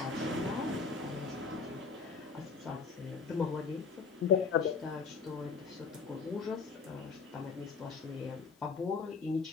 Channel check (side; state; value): right; quieter; 5.1 dB